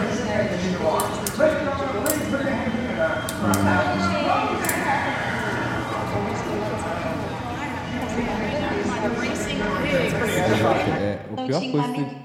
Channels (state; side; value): identical; both; correlation 1.00